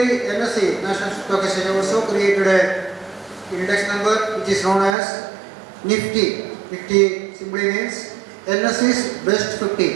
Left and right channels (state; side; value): drops out; left; at 5.0 s